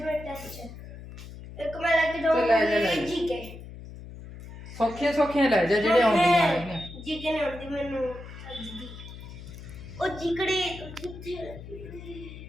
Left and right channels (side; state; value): left; noise; hum, 13 dB below the sound